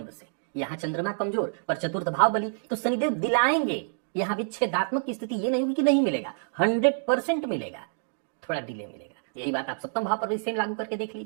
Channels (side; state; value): left; silent; digital silence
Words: से। यहां चंद्रमा कमजोर पर चतुर्थ भाव बली, तो शनिदेव दिलाएंगे। यहां विच्छेदात्मक की स्थिति ये नहीं होगी कि नहीं मिलेगा, 100% मिलेगा, थोड़ा डिले मिलेगा। यही बात आप सप्तम भाव पर भी सेम लागू करके देख